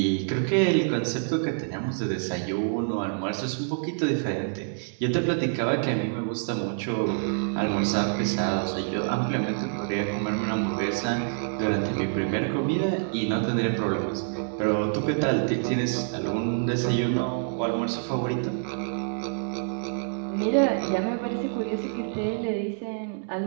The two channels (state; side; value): silent; left; digital silence